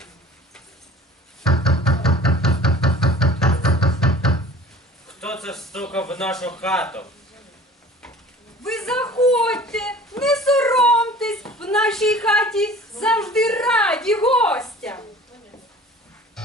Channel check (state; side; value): normal; both; correlation 0.45